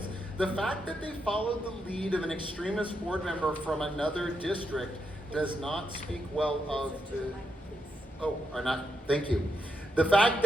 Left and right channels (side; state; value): both; normal; correlation 0.82